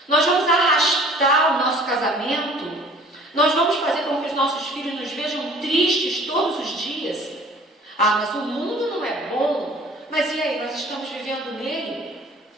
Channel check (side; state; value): both; normal; correlation 0.50